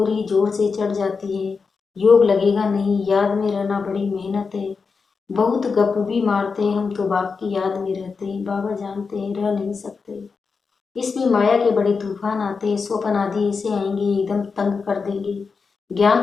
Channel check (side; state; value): right; quieter; 5.0 dB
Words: ही जोर से चढ़ जाती है। योग लगेगा नहीं, याद में रहना बड़ी मेहनत है। बहुत गप भी मारते हैं हम तो बाप की याद में रहते हैं। बाबा जानते हैं रह नहीं सकते, इसमें माया के बड़े तूफान आते हैं, स्वप्न आदि ऐसे आएंगे एकदम तंग कर देंगे।